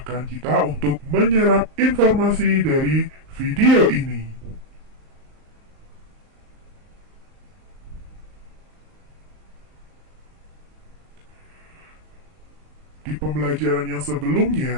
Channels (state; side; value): late; left; 38 ms